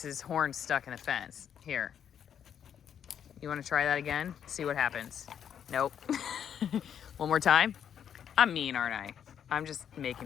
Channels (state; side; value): quieter; right; 8.7 dB